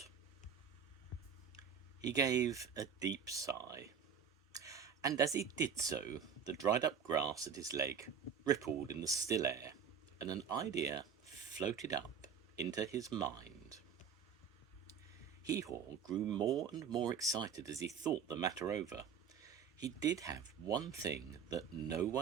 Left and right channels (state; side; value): quieter; left; 7.0 dB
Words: He gave a deep sigh, and as he did so, the dried up grass at his leg rippled in the still air, and an idea floated up into his mind. Hee-Haw grew more and more excited as he thought the matter over. He did have one thing that no